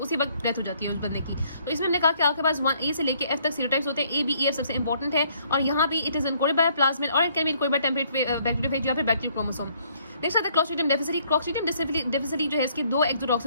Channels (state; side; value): inverted; both; correlation -0.65